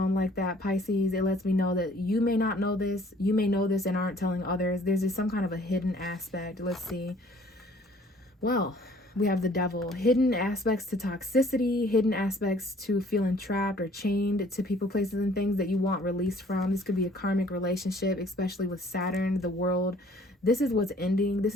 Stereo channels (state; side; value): normal; both; correlation 0.56